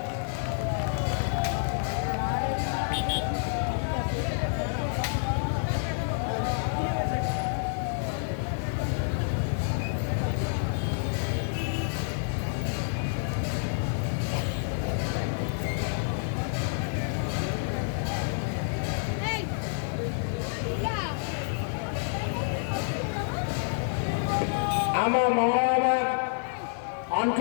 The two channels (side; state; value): right; silent; 57 dB below the other